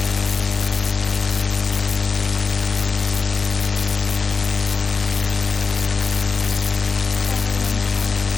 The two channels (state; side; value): quieter; right; 4.7 dB